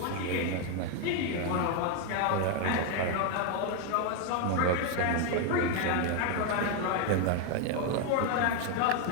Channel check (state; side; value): different; both; correlation 0.01